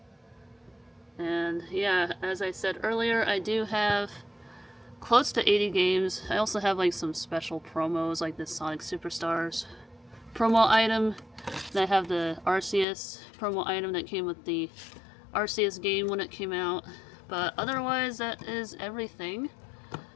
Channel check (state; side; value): drops out; right; at 12.9 s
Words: And yeah, as I said earlier, I do have close to 80 games. I also have like some special promos, like this Sonic Superstars promo item. And I have the Arceus promo item that came with the Arceus game when it came out. But otherwise, that is everything